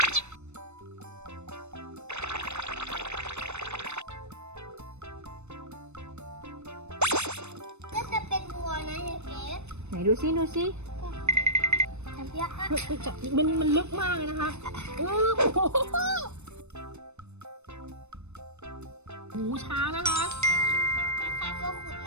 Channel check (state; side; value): late; left; 0.81 ms